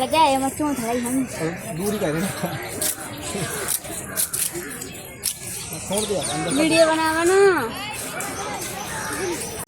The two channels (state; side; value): identical; both; correlation 1.00